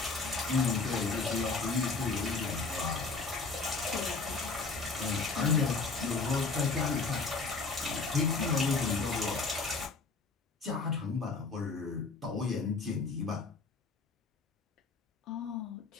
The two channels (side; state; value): right; quieter; 4.2 dB